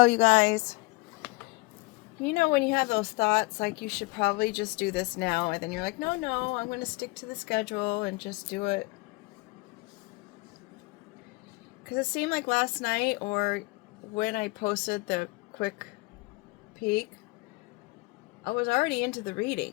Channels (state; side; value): quieter; right; 24.9 dB